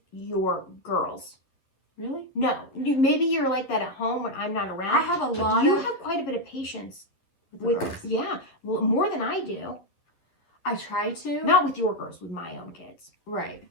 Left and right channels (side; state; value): right; late; 11 ms